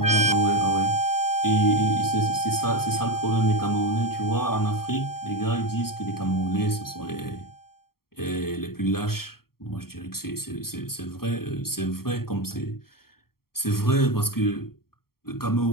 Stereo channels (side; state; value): right; late; 0.94 ms